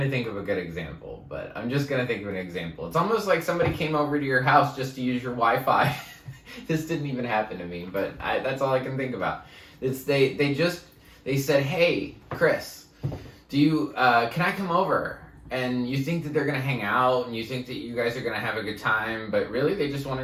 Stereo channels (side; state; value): both; identical; correlation 1.00